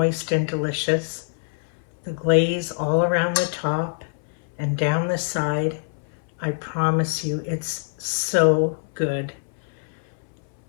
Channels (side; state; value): right; silent; 61 dB below the other